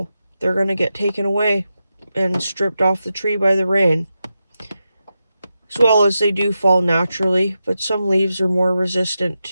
they're going to get taken away and stripped off the tree by the rain. As well as they do fall naturally, but some leaves are more resistant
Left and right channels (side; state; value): both; inverted; correlation -0.89